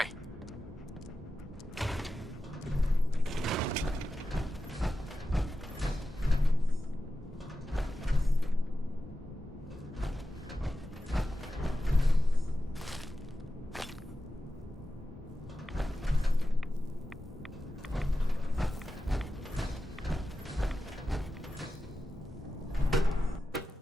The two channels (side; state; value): both; normal; correlation 0.92